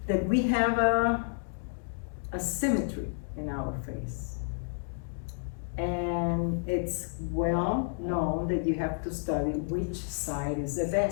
that we have a symmetry in our face. And it's well known that you have to study which side is the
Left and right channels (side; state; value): right; silent; digital silence